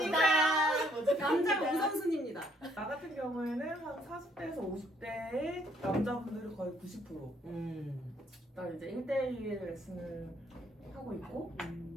남자 우선순위입니다. 나 같은 경우에는 한 40대에서 50대의 남자분들이 거의 90%. 나 이제 1대1 레슨을 하고 있고,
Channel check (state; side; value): normal; both; correlation 0.67